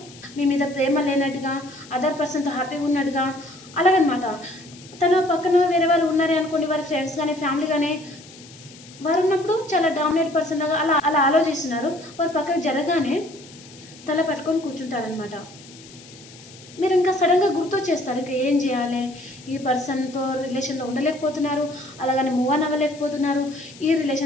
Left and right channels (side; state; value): left; noise; hiss, 20 dB below the sound